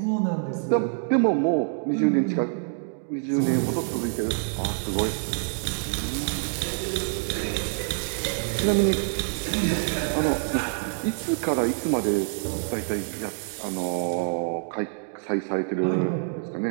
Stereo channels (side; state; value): left; silent; digital silence